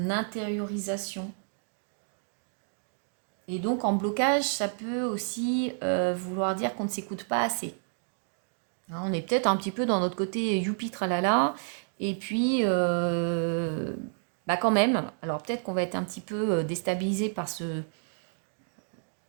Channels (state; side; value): silent; left; 58 dB below the other